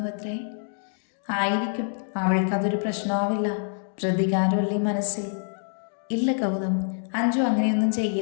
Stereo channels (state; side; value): silent; right; 61 dB below the other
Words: അത്രേ? ആയിരിക്കും. അവൾക്കതൊരു പ്രശ്നമാവില്ല. പ്രതികാരമല്ലേ മനസ്സിൽ? ഇല്ല ഗൗതം, അഞ്ജു അങ്ങനെയൊന്നും